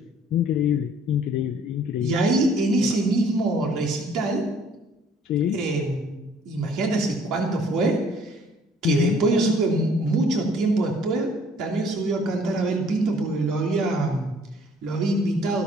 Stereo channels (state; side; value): normal; both; correlation 0.58